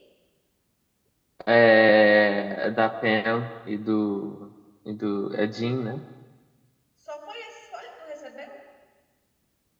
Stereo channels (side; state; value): both; identical; correlation 1.00